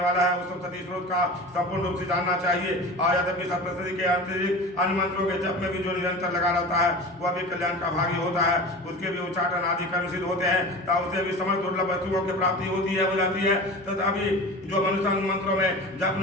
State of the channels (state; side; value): normal; both; correlation 0.34